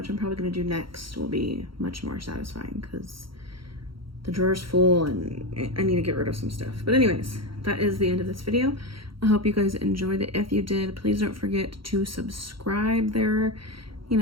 I'm probably gonna do next, will be much more satisfying because the drawer's full and I need to get rid of some stuff. But anyways, that is the end of this video. I hope you guys enjoyed it. If you did, please don't forget to subscribe there. You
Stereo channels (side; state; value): left; late; 0.74 ms